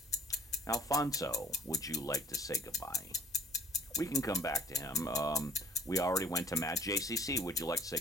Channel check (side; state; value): both; normal; correlation 0.56